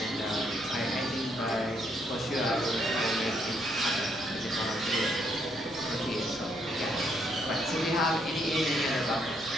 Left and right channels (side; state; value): left; noise; rumble, 24 dB below the sound